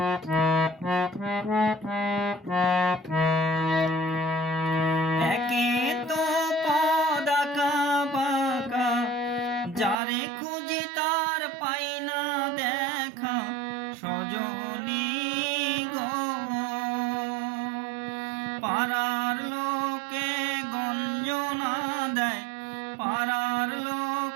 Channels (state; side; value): drops out; left; at 10.0 s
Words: একে তো পথ আঁকা বাঁকা, যারে খুঁজি তার পাই না দেখা, সজনী গো। পাড়ার লোকে গঞ্জনা দেয়, পাড়ার